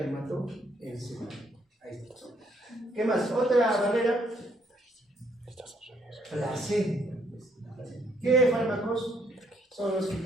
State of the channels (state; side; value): normal; both; correlation 0.69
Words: hematoencefálica. Ahí está. ¿Qué más? Otra barrera. Placenta. ¿Qué fármacos son los que